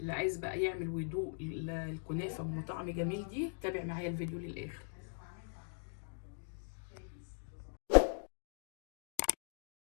عايز بقى يعمل ويدوق الكنافه ام طعم جميل دي، تابع معايا الفيديو للاخر.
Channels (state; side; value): silent; right; digital silence